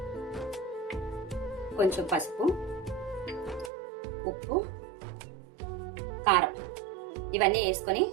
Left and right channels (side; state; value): left; drops out; at 3.7 s